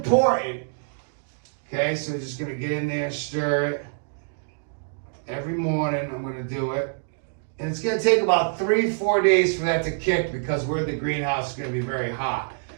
okay, so we're just going to get in there and stir it. Every morning I'm going to do it. And it's going to take about 3-4 days for that to kick because we're in the greenhouse, it's going to be very hot.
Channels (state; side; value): silent; left; digital silence